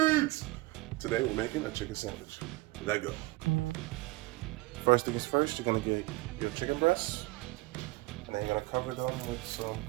Today we're making a chicken sandwich. Let go. First things first, you're gonna get your chicken breasts, and then you're gonna cover them with some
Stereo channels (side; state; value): left; quieter; 20.7 dB